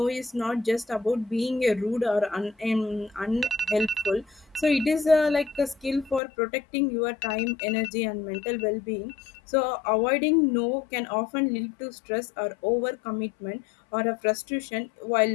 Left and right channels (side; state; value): right; drops out; at 6.2 s